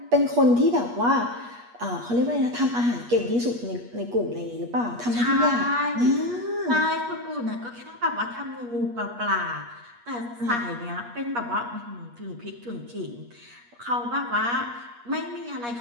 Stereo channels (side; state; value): left; late; 8.4 ms